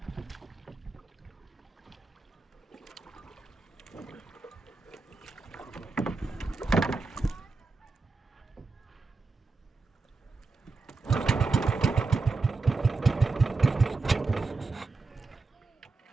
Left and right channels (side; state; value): left; quieter; 3.7 dB